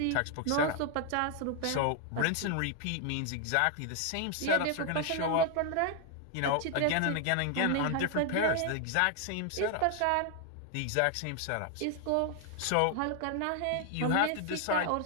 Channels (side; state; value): both; different; correlation 0.00